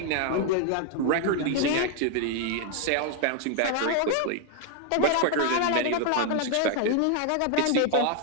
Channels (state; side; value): different; both; correlation 0.00